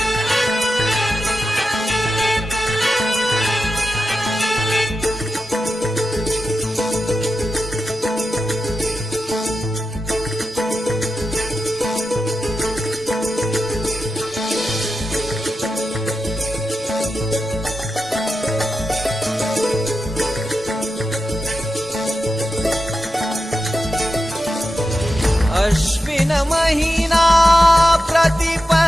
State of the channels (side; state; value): both; normal; correlation 0.90